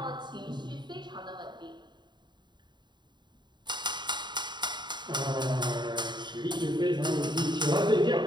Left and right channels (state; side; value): late; left; 0.22 ms